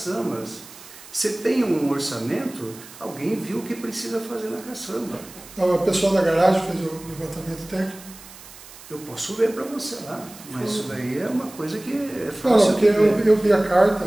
Você tem um orçamento, alguém viu o que precisa fazer na caçamba. Não, o pessoal da garagem fez o levantamento técnico? Eu posso ver para você lá, mas isso daí é uma coisa que é fácil. Não, porque eu vi a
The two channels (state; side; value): noise; right; hiss, 18 dB below the sound